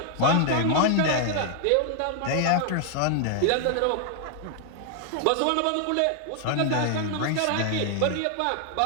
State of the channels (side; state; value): both; different; correlation 0.00